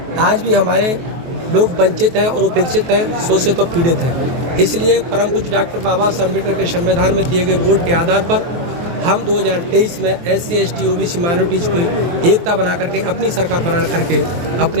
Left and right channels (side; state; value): left; late; 23 ms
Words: आज भी हमारे लोग वंचित हैं और उपेक्षित हैं, शोषित और पीड़ित हैं। इसलिए परम पूज्य डॉक्टर बाबा साहब अम्बेडकर के संविधान में दिए गए वोट के आधार पर हम 2023 में SC, ST, OBC माइनॉरिटीज को एकता बना करके अपनी सरकार बना करके